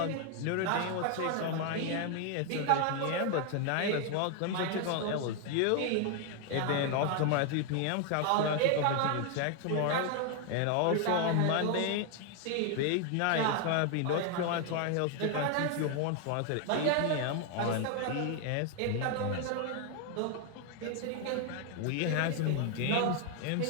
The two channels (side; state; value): both; different; correlation 0.01